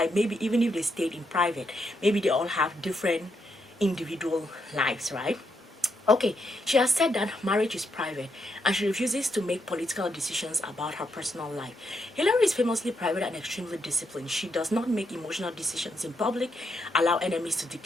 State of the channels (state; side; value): normal; both; correlation 0.79